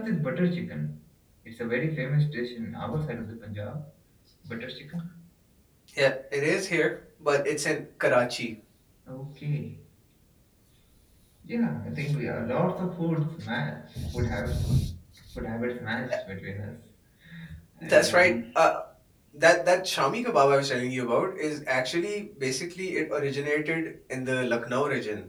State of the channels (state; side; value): identical; both; correlation 1.00